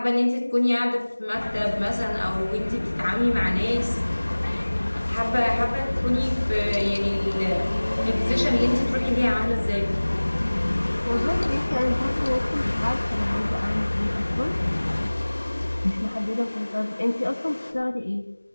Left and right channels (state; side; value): inverted; both; correlation -1.00